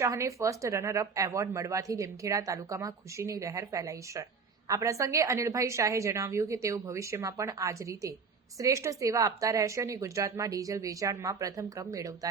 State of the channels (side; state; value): left; quieter; 5.2 dB